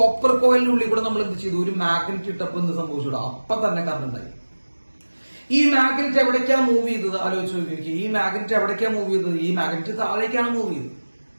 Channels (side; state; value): both; inverted; correlation -1.00